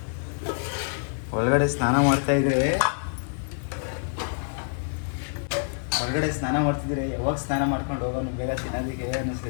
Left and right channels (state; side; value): silent; right; digital silence